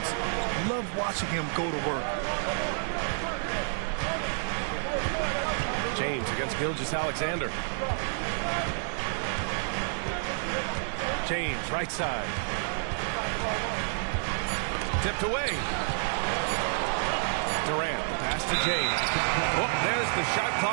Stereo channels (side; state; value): left; silent; digital silence